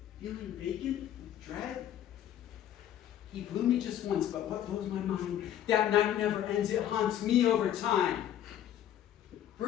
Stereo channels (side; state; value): right; quieter; 11.0 dB